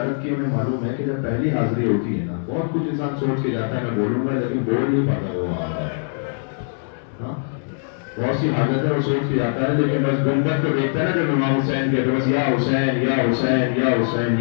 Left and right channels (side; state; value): right; silent; digital silence